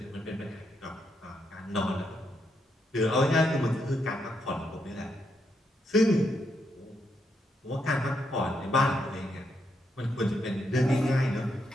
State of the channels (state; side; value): normal; both; correlation 0.79